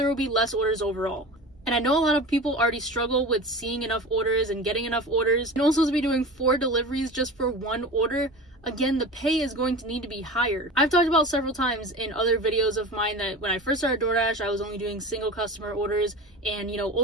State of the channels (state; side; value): normal; both; correlation 0.33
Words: will be less orders overall. And I know a lot of people already struggle with seeing enough orders and getting enough orders. And also to be doing 4 deliveries just for 1 order, again, the pay is going to need to be higher. I've talked about several times in other videos of mine that when I first started DoorDash, I was only doing single customer orders. And,